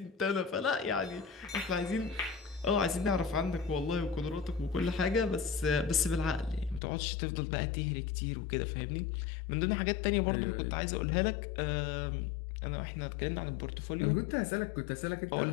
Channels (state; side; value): drops out; right; at 6.8 s